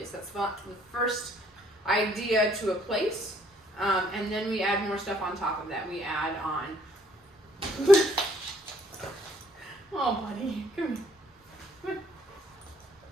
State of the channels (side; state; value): both; normal; correlation 0.64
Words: That's the first idea to a place. And then we add more stuff on top of that. We add on... Oh, buddy, come here.